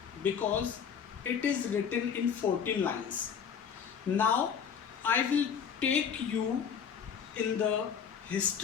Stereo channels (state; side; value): quieter; right; 7.3 dB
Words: because it is written in 14 lines. Now, I will take you in the